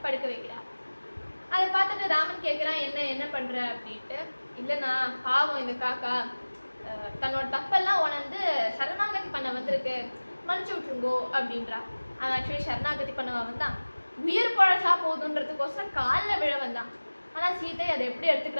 படுக்க வைக்கிறார். அதை பார்த்துட்டு ராமன் கேட்குறான், என்ன பண்ணுற அப்படின்ட்டு. இல்லைண்ணா, பாவம் இந்த காக்கா தன்னோட தப்பெல்லாம் உணர்ந்து சரணாகதி பண்ண வந்திருக்கு, மன்னிச்சு விட்டுருங்கோ அப்படின்றா. அவன் ஆக்சுவலி சரணாகதி பண்ணவா வந்தான், உயிர் பழசா போதுன்றதுக்கோசரம் காலில் விழ வந்தான். ஆனால் சீதை அதை எப்படி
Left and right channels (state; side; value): inverted; both; correlation -1.00